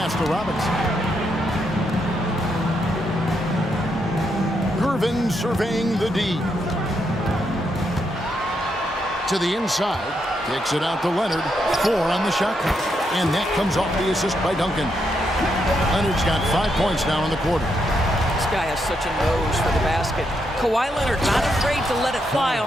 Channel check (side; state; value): both; normal; correlation 0.80